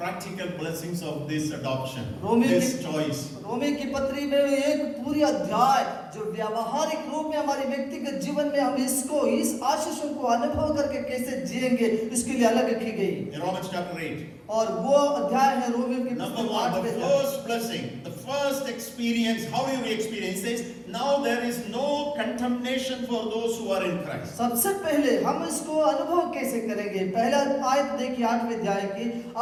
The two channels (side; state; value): both; identical; correlation 1.00